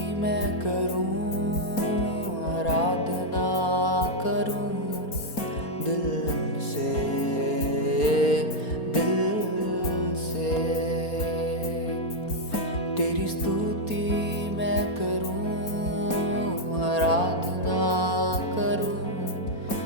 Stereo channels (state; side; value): late; right; 4.3 ms